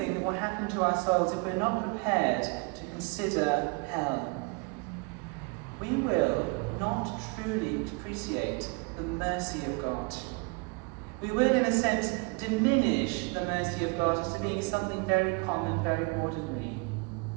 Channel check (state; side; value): quieter; left; 29.1 dB